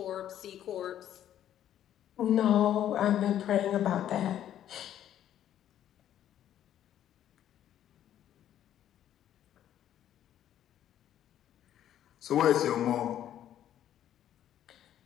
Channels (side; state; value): right; quieter; 11.1 dB